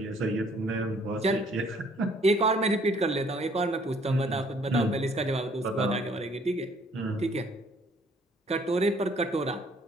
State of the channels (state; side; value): normal; both; correlation 0.61